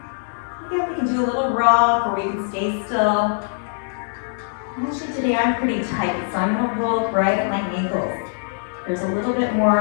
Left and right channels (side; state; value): right; silent; digital silence